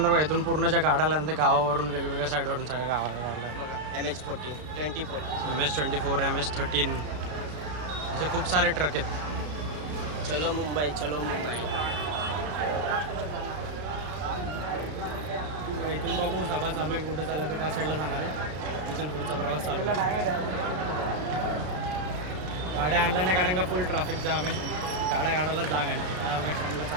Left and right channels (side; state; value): left; late; 33 ms